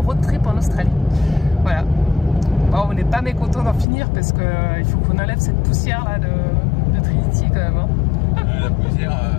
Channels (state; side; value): drops out; right; at 3.9 s